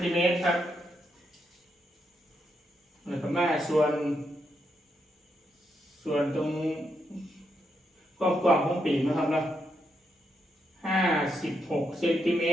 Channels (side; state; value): both; normal; correlation 0.81